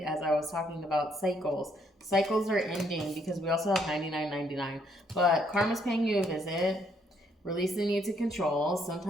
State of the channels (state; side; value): normal; both; correlation 0.70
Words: as I was talking about cycles. Cycles are ending because we also have 99.99. But karma's paying you a visit. Release the need to control.